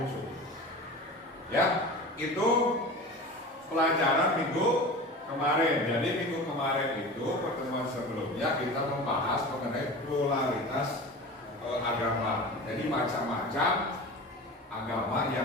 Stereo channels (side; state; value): both; normal; correlation 0.33